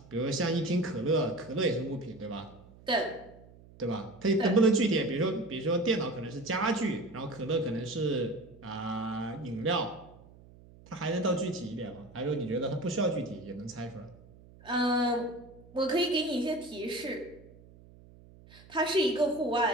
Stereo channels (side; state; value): right; noise; hum, 22 dB below the sound